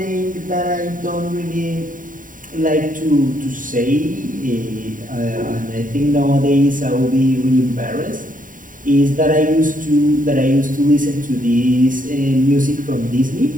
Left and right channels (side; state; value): left; late; 0.39 ms